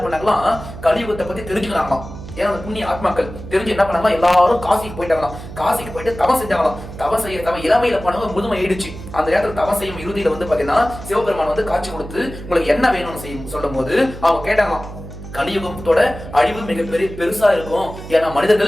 பண்ணாங்களாம், கலியுகத்தை பத்தி தெரிஞ்சுக்கிறாங்களாம். ஏன்னா அந்த புண்ணிய ஆத்மாக்கள் தெரிஞ்சு என்ன பண்ணாங்களா, எல்லாரும் காசிக்கு போயிட்டாங்களாம். காசிக்கு போயிட்டு தவம் செஞ்சாங்களாம். தவம் இளமையில போனவங்க முதுமை ஆயிடுச்சு. அந்த நேரத்தில் தவம் செய்யும் இறுதியில வந்து பாத்தீங்கன்னா சிவபெருமான் வந்து காட்சி கொடுத்து உங்களுக்கு என்ன வேணும்னு செய்யும் சொல்லும் போது அவங்க கேட்டாங்களாம், கலியுகத்தோட அழிவு மிகப்பெரிய பெருசா இருக்கும். ஏன்னா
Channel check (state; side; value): noise; right; hum, 12 dB below the sound